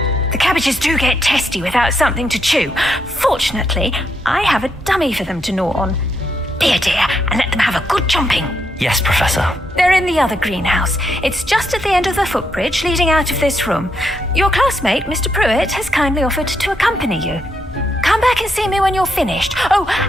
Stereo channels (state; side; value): normal; both; correlation 0.79